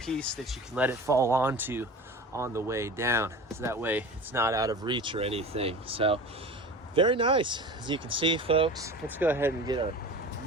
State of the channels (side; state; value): both; normal; correlation 0.35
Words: that you can let it fall onto on the way down. So that way it's not out of reach or anything. So very nice. As you can see, folks, let's go ahead and get our